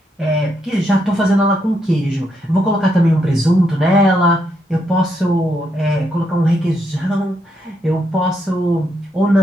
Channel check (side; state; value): both; normal; correlation 0.78